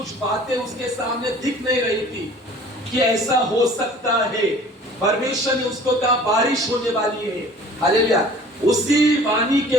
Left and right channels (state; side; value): normal; both; correlation 0.48